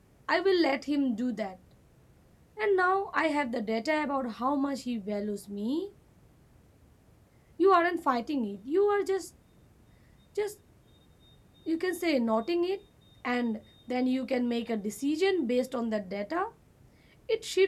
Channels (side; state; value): both; identical; correlation 1.00